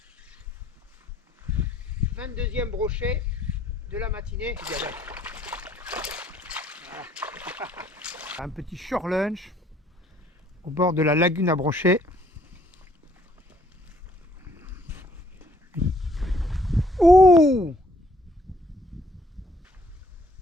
22e brochet de la matinée. Voilà. Un petit shore lunch au bord de la lagune à brochets. Ouh!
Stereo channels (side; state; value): both; normal; correlation 0.64